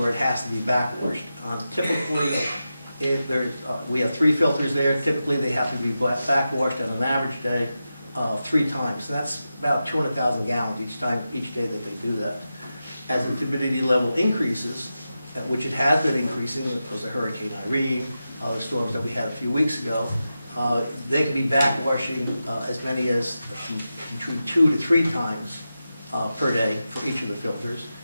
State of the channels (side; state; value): both; inverted; correlation -0.91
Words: it has to be backwashed. Typically, if there's, we have 3 filters there. Typically, they have to be backwashed on an average day 3 times. And that's about 200,000 gallons each day that they do that. As the turbidity level increases, which it has been increasing, because of Hurricane Irene, the storms that we had a few weeks ago, they can be backwashing as many as between 2 to 3 times per day for each of the filters.